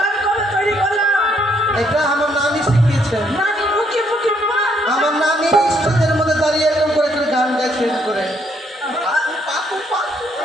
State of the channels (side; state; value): both; normal; correlation 0.70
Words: কবে তৈরি করলাম? এটা আমার নানি শিখিয়েছে। নানি মুখে মুখে মার। আমার নানি স্টেজের মধ্যে দাঁড়িয়ে এরকম করে করে গান গাইছে করে।